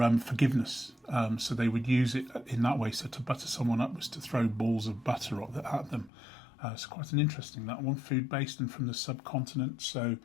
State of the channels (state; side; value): drops out; right; at 6.1 s